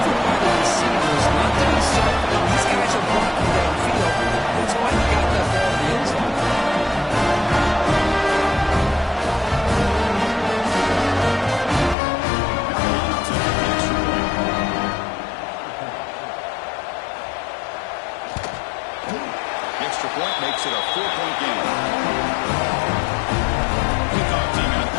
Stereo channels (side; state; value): right; drops out; at 12.0 s